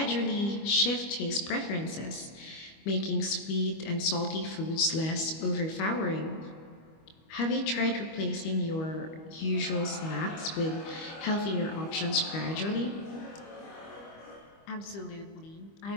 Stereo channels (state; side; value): late; right; 25 ms